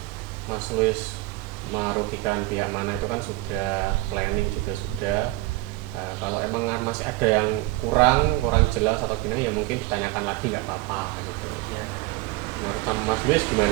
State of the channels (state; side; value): quieter; left; 20.1 dB